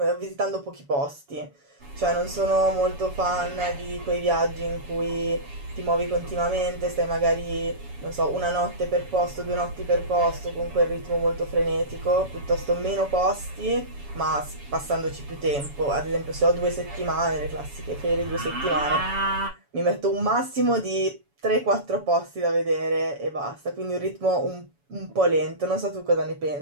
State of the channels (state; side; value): late; left; 7.1 ms